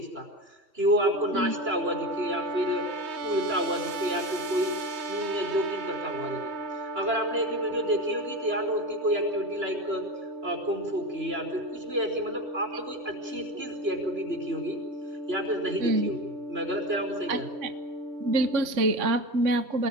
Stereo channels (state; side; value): late; left; 3.2 ms